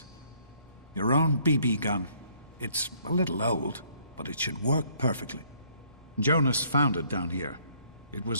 Your own BB gun. It's a little old, but it should work perfectly. Jonas found it down here. It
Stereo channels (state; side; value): inverted; both; correlation -0.65